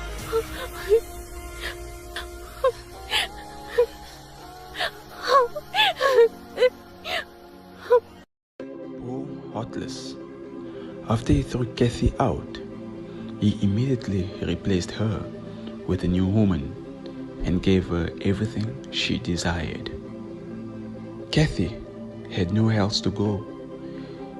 Heartless. After he threw Kathy out, he immediately replaced her with a new woman and gave her everything she desired. Kathy had nowhere else to go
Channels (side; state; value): both; identical; correlation 1.00